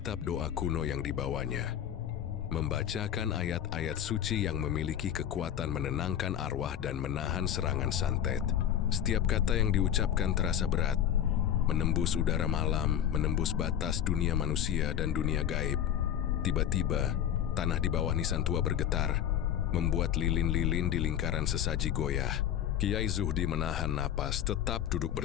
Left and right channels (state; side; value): quieter; right; 10.0 dB